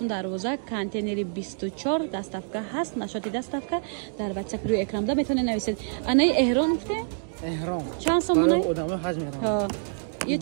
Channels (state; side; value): silent; left; digital silence